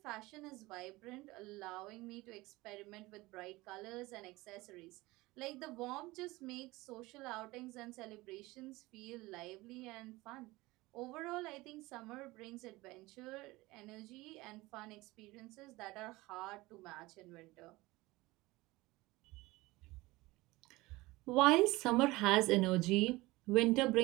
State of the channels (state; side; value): quieter; left; 20.6 dB